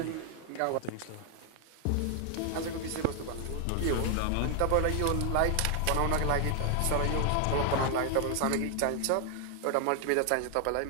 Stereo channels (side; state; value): both; different; correlation 0.00